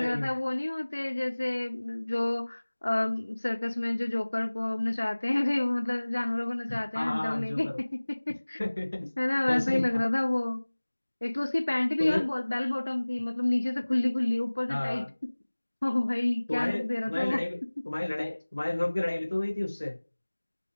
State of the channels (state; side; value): inverted; both; correlation -1.00